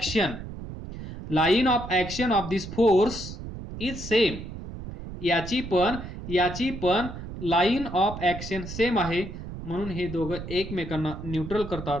Line of action of this force is same. याची पण लाईन ऑफ ऍक्शन सेम आहे, म्हणून हे दोघं एकमेकांना न्यूट्रल करतात.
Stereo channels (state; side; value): noise; right; rumble, 10 dB below the sound